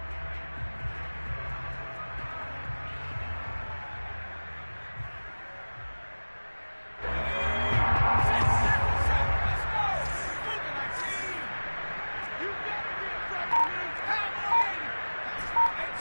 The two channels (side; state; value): both; inverted; correlation -1.00